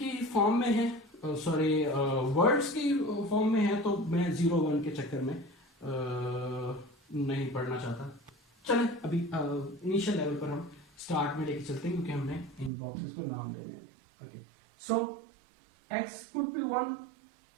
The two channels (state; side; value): drops out; left; at 12.7 s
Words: फॉर्म में है, सॉरी वर्ड्स की फॉर्म में है, तो मैं 0 1 के चक्कर में नहीं पढ़ना चाहता। चलें अभी इनिशियल लेवल पर हम स्टार्ट में लेके चलते हैं क्योंकि हमने इन बॉक्सेस को नाम देने हैं। Okay, so x could be 1,